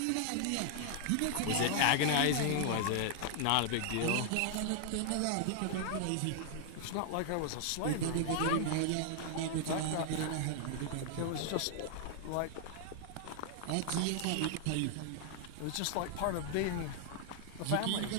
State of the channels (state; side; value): different; both; correlation 0.00